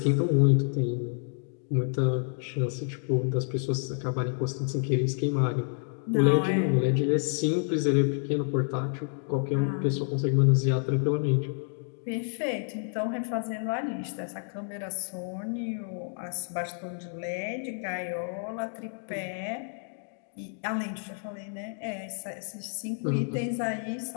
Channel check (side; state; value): right; silent; 58 dB below the other